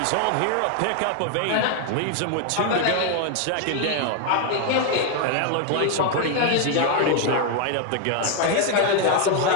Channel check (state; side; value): different; both; correlation 0.00